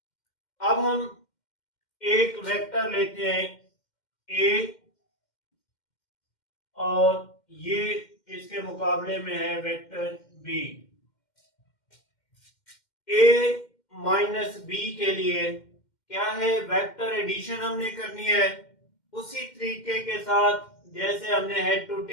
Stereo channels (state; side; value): late; right; 2.1 ms